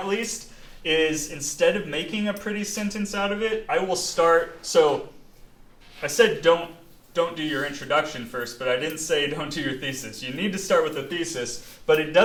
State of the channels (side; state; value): both; identical; correlation 1.00